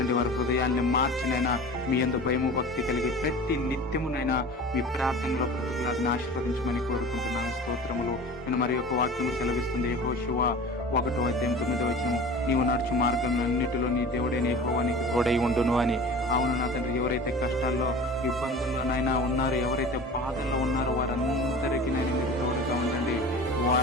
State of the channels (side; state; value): both; normal; correlation 0.37